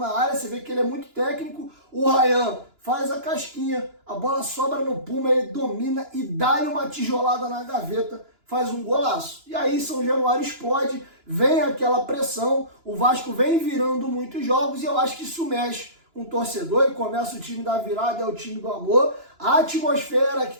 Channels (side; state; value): left; late; 2.9 ms